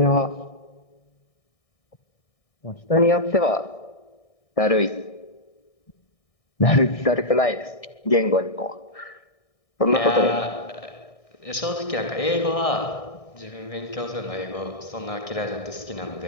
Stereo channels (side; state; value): right; late; 1.6 ms